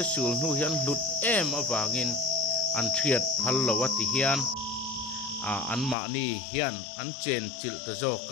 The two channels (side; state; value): right; drops out; at 6.0 s